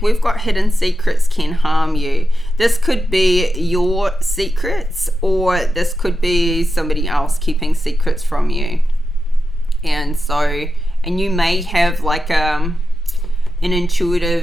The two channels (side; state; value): both; normal; correlation 0.90